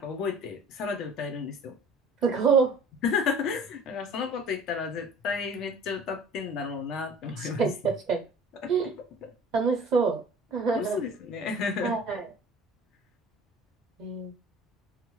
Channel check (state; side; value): normal; both; correlation 0.46